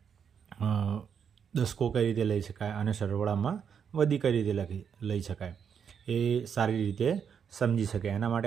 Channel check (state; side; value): quieter; left; 7.3 dB